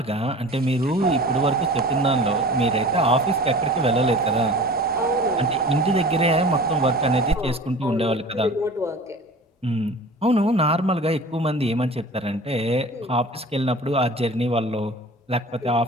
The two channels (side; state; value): both; normal; correlation 0.40